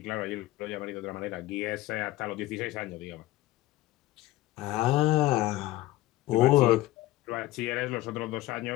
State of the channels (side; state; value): right; quieter; 16.7 dB